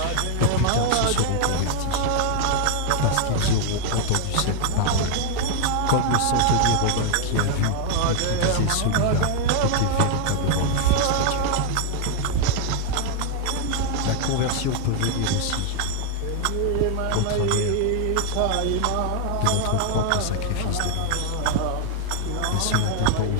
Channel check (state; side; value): different; both; correlation 0.00